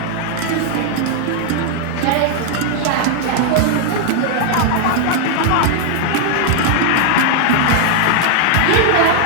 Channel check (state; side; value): different; both; correlation 0.00